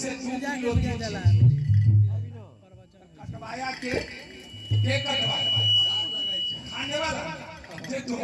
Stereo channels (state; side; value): identical; both; correlation 1.00